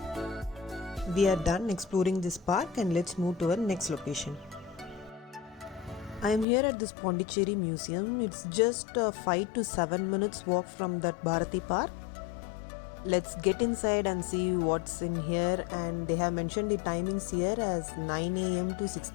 We are done exploring this park and let's move to our next location. I am here at this Pondicherry Museum. It's just 5 to 7 minutes walk from that Bharati Park. Let's get inside and see what's in here, and they have mentioned the timings here as 9 a.m. to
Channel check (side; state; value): right; drops out; at 6.5 s